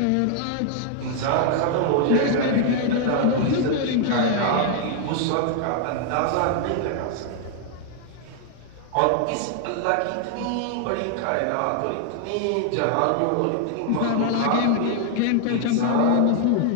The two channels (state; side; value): different; both; correlation 0.00